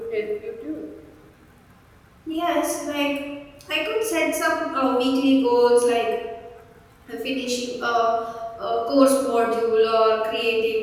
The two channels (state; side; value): identical; both; correlation 1.00